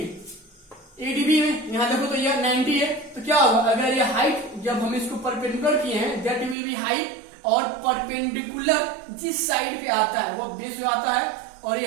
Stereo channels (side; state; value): left; drops out; at 6.6 s